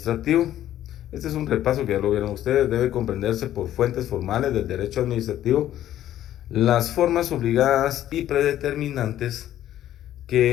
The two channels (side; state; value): right; quieter; 12.4 dB